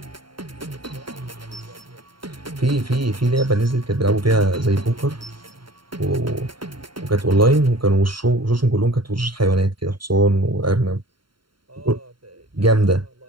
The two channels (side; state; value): left; late; 0.73 ms